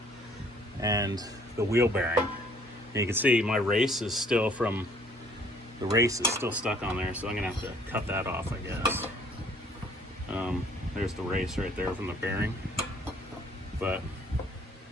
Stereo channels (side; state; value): both; normal; correlation 0.59